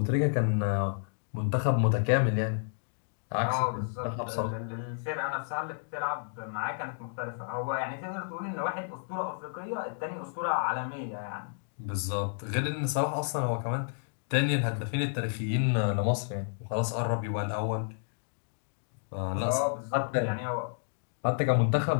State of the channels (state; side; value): silent; right; digital silence